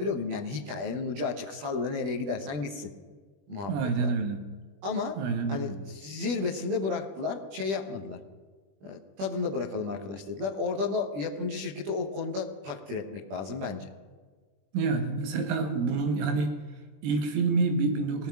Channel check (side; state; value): left; late; 20 ms